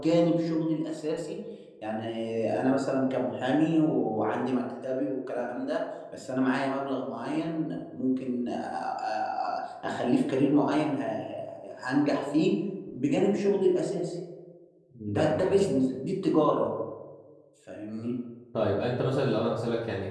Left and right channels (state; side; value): identical; both; correlation 1.00